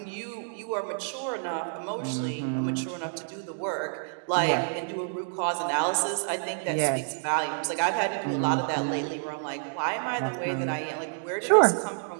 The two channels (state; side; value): silent; left; digital silence